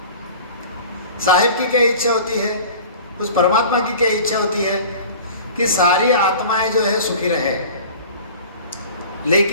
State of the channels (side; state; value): both; inverted; correlation -0.42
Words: साहेब की क्या इच्छा होती है? उस परमात्मा की क्या इच्छा होती है? कि सारी आत्माएं जो है सुखी रहे।